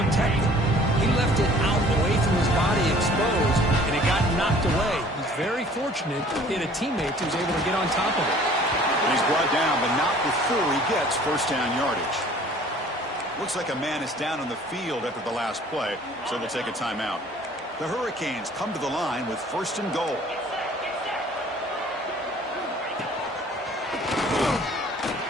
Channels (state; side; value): normal; both; correlation 0.52